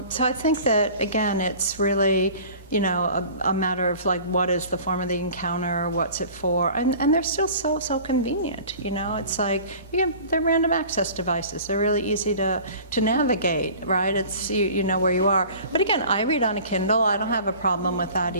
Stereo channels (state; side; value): inverted; both; correlation -0.44